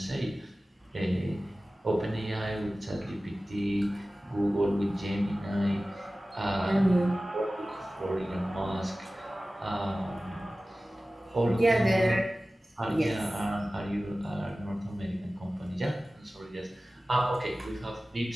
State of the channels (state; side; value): normal; both; correlation 0.96